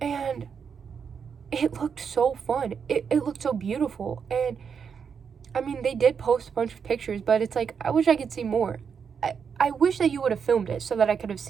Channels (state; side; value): quieter; left; 6.6 dB